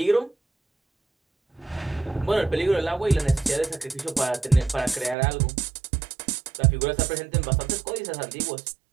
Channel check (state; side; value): drops out; left; at 5.2 s